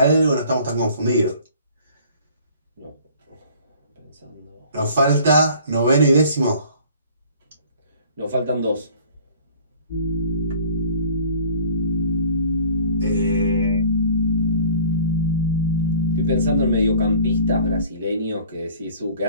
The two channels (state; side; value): inverted; both; correlation -0.50